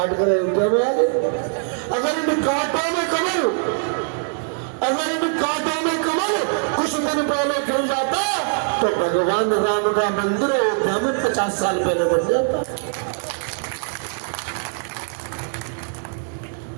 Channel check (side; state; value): left; silent; 58 dB below the other